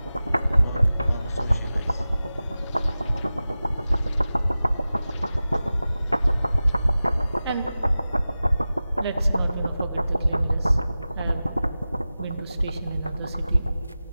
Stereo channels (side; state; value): both; inverted; correlation -0.96